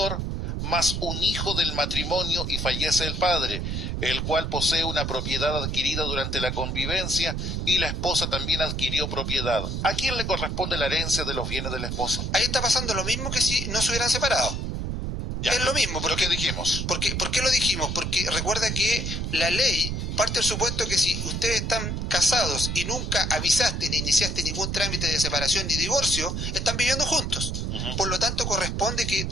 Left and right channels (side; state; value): right; noise; rumble, 2 dB below the sound